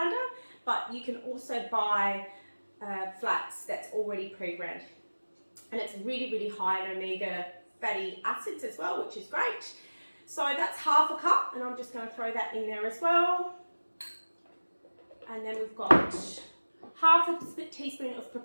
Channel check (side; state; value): both; inverted; correlation -1.00